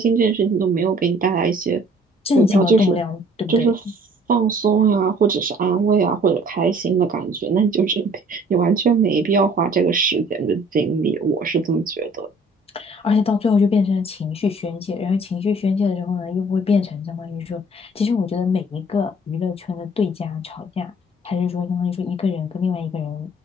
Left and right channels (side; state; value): both; normal; correlation 0.55